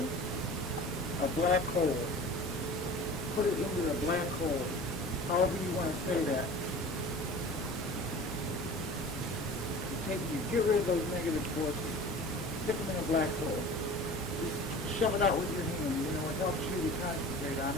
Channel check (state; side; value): normal; both; correlation 0.39